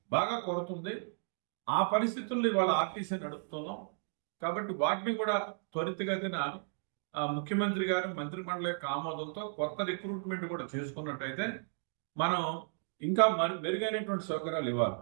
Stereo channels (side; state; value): left; silent; digital silence